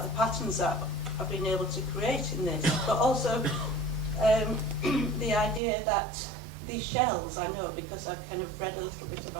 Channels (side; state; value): left; drops out; at 5.6 s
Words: the patterns that I've been able to create in this, but also the idea that these shells, I know because I've kind of read a little bit